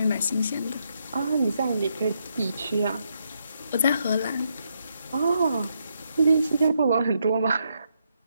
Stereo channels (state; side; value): inverted; both; correlation -0.79